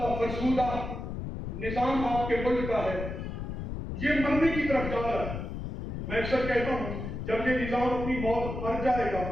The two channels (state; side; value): noise; left; rumble, 6 dB below the sound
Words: فرسودہ نظام آپ کے ملک کا ہے، یہ مرنے کی طرف جا رہا ہے. میں اکثر کہتا ہوں جب یہ نظام اپنی موت مر جائے گا